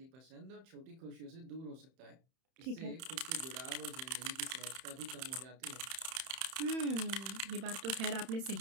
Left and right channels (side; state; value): left; late; 31 ms